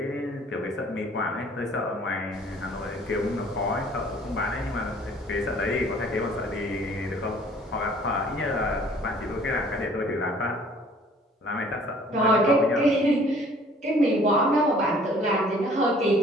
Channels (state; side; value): normal; both; correlation 0.55